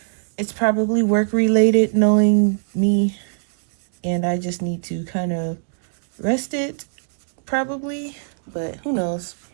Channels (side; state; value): left; silent; digital silence